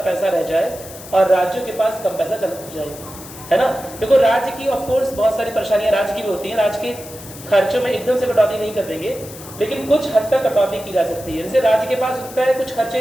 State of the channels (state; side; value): noise; left; hiss, 16 dB below the sound